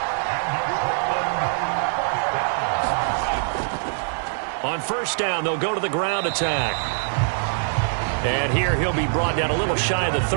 On 1st down, they'll go to the ground attack. And here he'll be brought down a little shy of the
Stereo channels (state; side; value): silent; left; 63 dB below the other